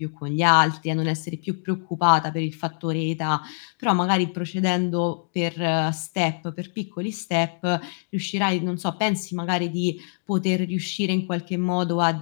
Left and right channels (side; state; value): right; silent; digital silence